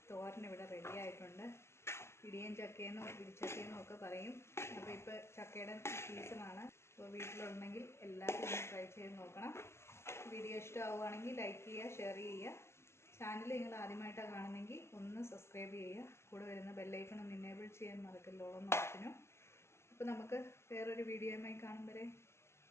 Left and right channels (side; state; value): right; late; 0.13 ms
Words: തോരൻ ഇവിടെ റെഡി ആയിട്ടുണ്ട്. ഇടിയൻ ചക്കയെന്നും ഇടിച്ചക്കയെന്നും ഒക്കെ പറയും. അപ്പോൾ ഇപ്പോൾ ചക്കയുടെ സീസണാണ്. അപ്പോൾ വീട്ടിലുണ്ടെങ്കിൽ എല്ലാവരും ഒന്ന് ട്രൈ ചെയ്ത് നോക്കണം. വീഡിയോ ഇഷ്ടമാവുകയാണെങ്കിൽ ലൈക്ക് ചെയ്യുക, ഷെയർ ചെയ്യുക. ചാനൽ നിങ്ങൾ ആദ്യമായിട്ടാണ് കാണുന്നെങ്കിൽ ഒന്ന് സബ്സ്ക്രൈബ് ചെയ്യുക. കൂടെ വരുന്ന ബെല്ലൈക്കൺ ഒന്ന് എനേബിൾ ചെയ്യാൻ മറക്കല്ലോ എന്ന ഓപ്ഷനും. അപ്പോൾ നമുക്ക് വേറൊരു വീഡിയോയുമായി കാണും വരെ